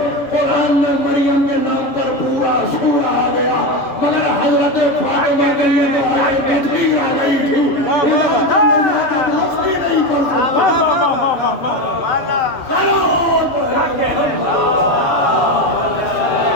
قرآن میں مریم کے نام پر پورا سورہ آ گیا, مگر حضرت فاطمہ کے لیے تو آیت تطہیر آ گئی تھی. نہیں کر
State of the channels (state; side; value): late; right; 7.5 ms